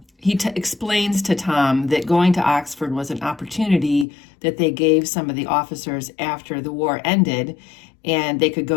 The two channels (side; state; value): right; drops out; at 4.0 s